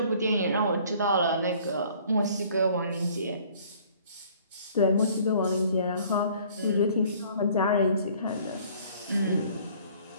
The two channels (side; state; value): both; inverted; correlation -0.55